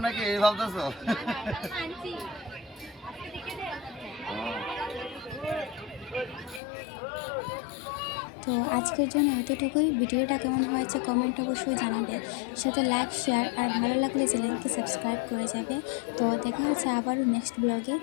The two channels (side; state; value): right; drops out; at 6.6 s